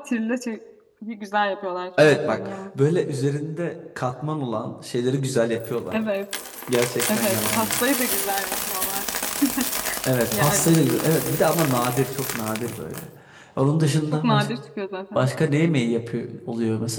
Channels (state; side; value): identical; both; correlation 1.00